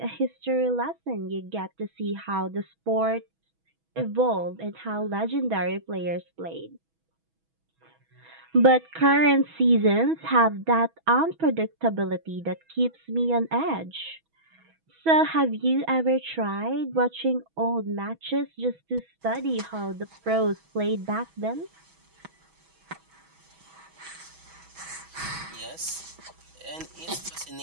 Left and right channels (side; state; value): left; late; 6.2 ms